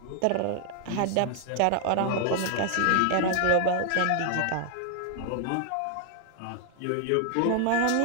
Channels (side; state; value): both; different; correlation 0.00